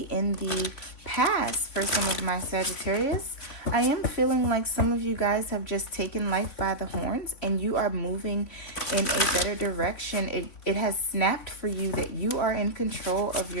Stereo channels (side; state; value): right; late; 3.5 ms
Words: in the past for some of my Sagittarius. I am feeling like some of you guys have just taken life by the horns and you are moving in a better direction. It has snapped for you that you are in control of